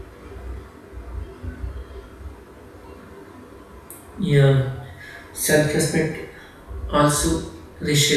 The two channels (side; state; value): both; identical; correlation 1.00